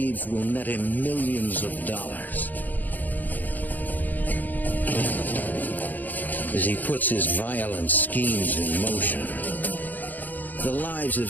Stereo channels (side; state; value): right; late; 0.084 ms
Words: will net him millions of dollars. As he puts his violent schemes in motion, the lives